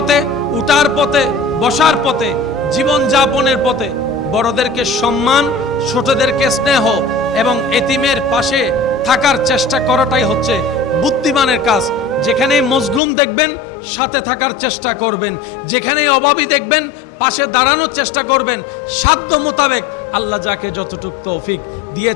উঠার পথে, বসার পথে, জীবন যাপনের পথে বড়দেরকে সম্মান, ছোটদেরকে স্নেহ এবং এতিমের পাশে থাকার চেষ্টা করাটাই হচ্ছে বুদ্ধিমানের কাজ। যেখানেই মজলুম দেখবেন সাথে থাকার চেষ্টা করবেন, যেখানেই অভাবী দেখবেন পাশে দাঁড়ানোর চেষ্টা করবেন, সাধ্য মোতাবেক আল্লাহ যাকে যতটুকু তৌফিক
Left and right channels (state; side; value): drops out; right; at 13.0 s